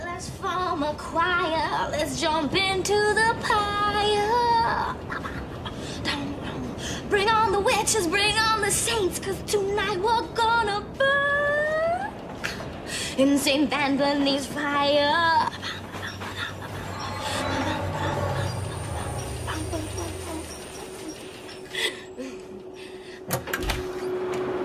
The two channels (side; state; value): both; identical; correlation 1.00